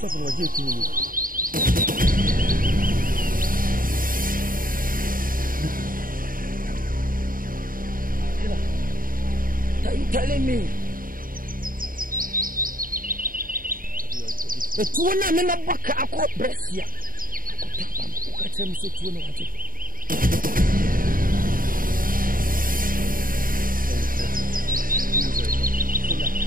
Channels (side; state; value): left; late; 0.41 ms